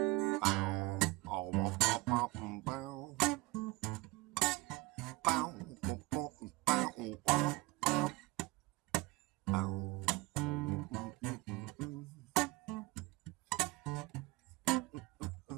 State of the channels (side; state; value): left; quieter; 21.8 dB